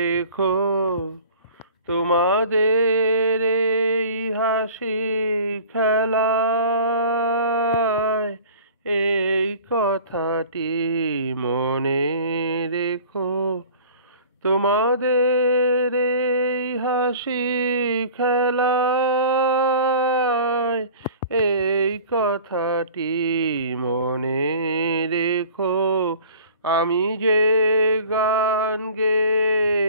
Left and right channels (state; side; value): inverted; both; correlation -0.45